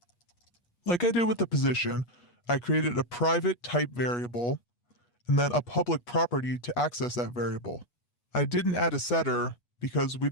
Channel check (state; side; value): late; right; 8.3 ms